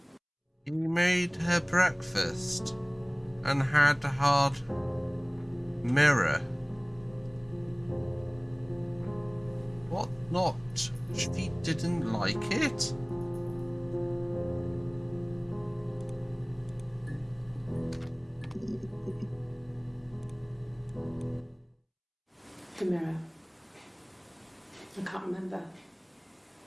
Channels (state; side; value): identical; both; correlation 1.00